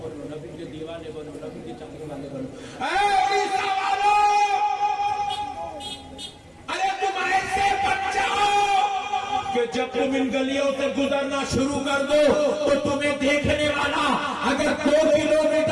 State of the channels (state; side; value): identical; both; correlation 1.00